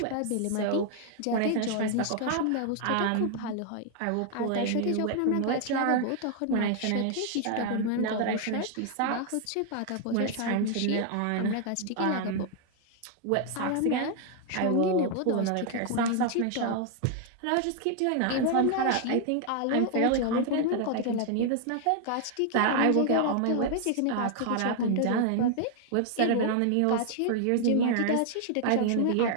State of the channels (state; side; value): different; both; correlation 0.00